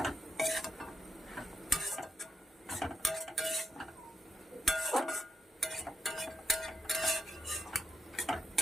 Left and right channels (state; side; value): normal; both; correlation 0.82